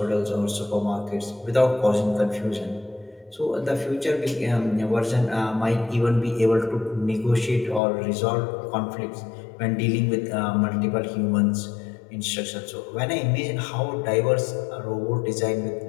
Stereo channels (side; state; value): right; drops out; at 7.8 s